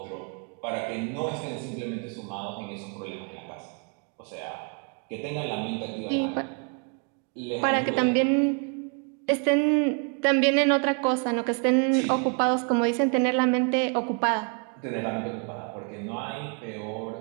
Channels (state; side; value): quieter; left; 39.2 dB